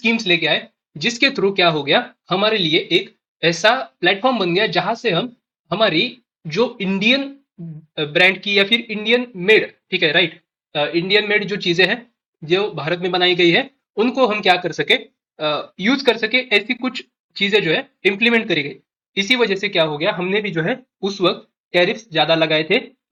लेके आए, जिसके थ्रू क्या हो गया, हमारे लिए एक ऐसा प्लेटफॉर्म बन गया जहां से हम हमारी जो इंडियन ब्रांड की या फिर इंडियन मेड, ठीक है, राइट, इंडियन मेड जो चीजें हैं जो भारत में बनाई गई है, उनको हम क्या कर सके, यूज कर सके। ऐसी कुछ चीजें जो है इम्प्लीमेंट करी गई। इसी वजह से क्या हो गया, हमने भी जो है उस वक्त टैरिफ्स ज्यादा लगाए थे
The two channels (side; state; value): both; identical; correlation 1.00